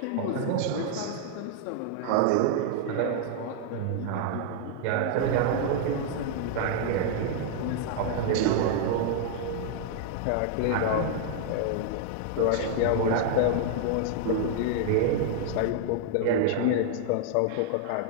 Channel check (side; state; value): both; different; correlation -0.01